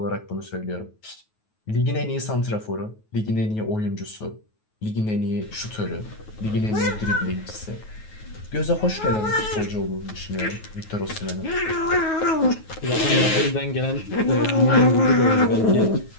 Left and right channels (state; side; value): late; right; 9.3 ms